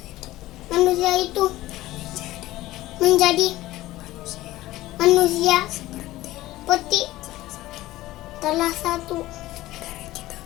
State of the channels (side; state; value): right; quieter; 16.7 dB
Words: manusia itu menjadi manusia seperti salah satu